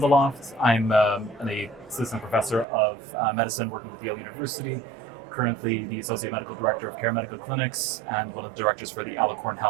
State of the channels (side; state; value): left; drops out; at 2.7 s